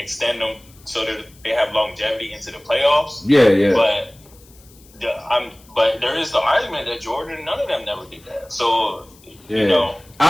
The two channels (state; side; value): noise; left; hiss, 27 dB below the sound